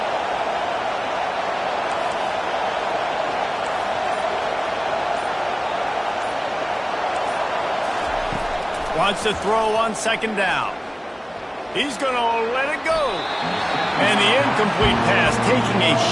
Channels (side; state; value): both; identical; correlation 1.00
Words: Wants to throw on 2nd down. He's going to let it go. And the incomplete pass, taking a